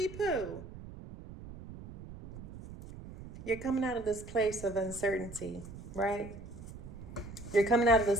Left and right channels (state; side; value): noise; right; rumble, 13 dB below the sound